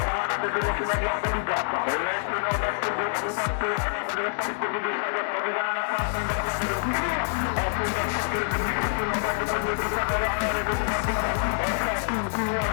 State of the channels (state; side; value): silent; right; digital silence